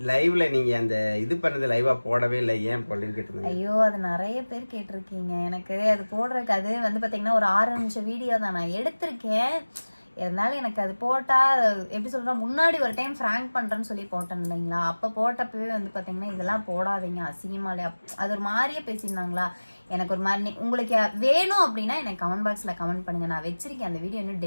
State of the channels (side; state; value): both; inverted; correlation -1.00